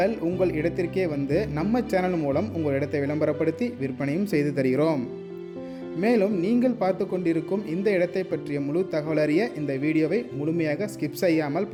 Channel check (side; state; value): both; identical; correlation 1.00